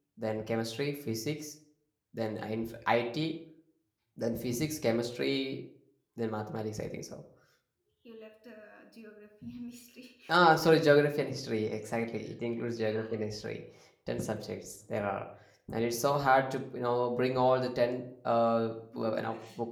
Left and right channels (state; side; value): identical; both; correlation 1.00